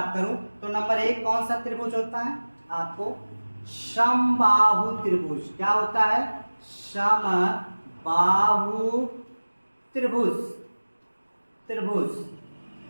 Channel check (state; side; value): inverted; both; correlation -1.00